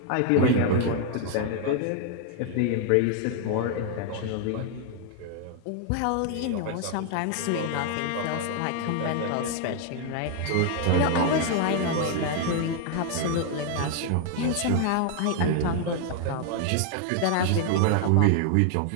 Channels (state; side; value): different; both; correlation 0.00